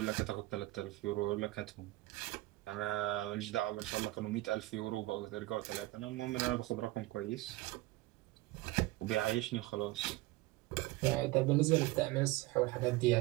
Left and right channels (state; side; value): quieter; left; 19.1 dB